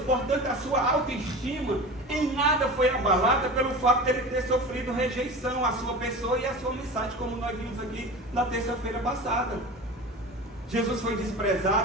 Portanto, a sua autoestima em nada foi abalada pelo fato de ele ter sofrido rejeição à sua pessoa e à sua mensagem, como nós vimos aqui na terça-feira passada. Jesus foi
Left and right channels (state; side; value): normal; both; correlation 0.33